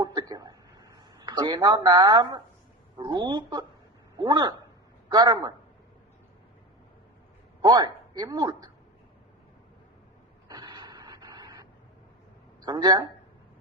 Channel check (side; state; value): both; normal; correlation 0.26